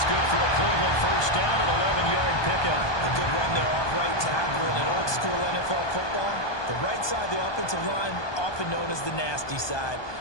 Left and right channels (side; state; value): right; late; 1.2 ms